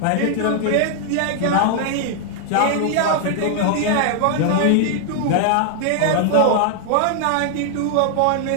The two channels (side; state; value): both; different; correlation 0.00